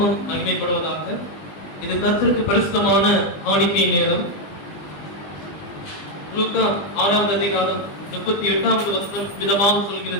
மகிமைப்படுவதாக. இது கர்த்தருக்கு பரிசுத்தமான காணிக்கை நேரம். லூக்கா 6ஆம் அதிகாரம் 38வது வசனம் விதமாக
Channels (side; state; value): right; late; 20 ms